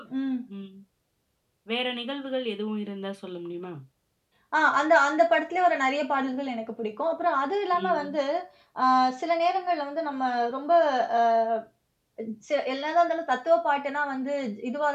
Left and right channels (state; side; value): identical; both; correlation 1.00